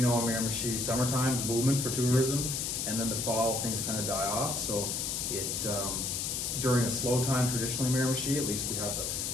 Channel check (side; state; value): left; noise; hiss, 1 dB below the sound